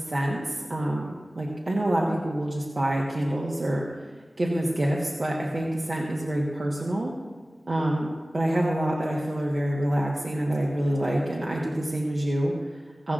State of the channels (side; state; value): both; normal; correlation 0.97